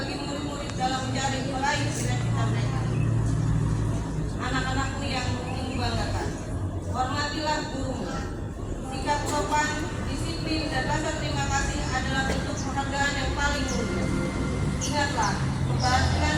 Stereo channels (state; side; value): identical; both; correlation 1.00